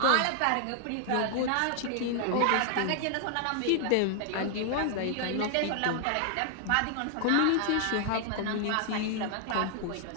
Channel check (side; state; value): both; different; correlation 0.00